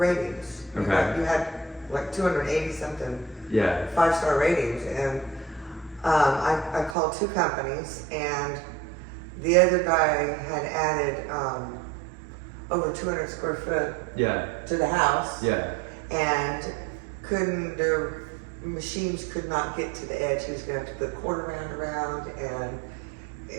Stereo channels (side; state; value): left; drops out; at 7.0 s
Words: Okay. You had like 280 something Yeah. 5-star ratings, and I called 2 companies, and the other guy had added over 200 square foot Yeah. to the house. Yeah. And their machines could not get to the edge. He was going to have to put quarter round around, and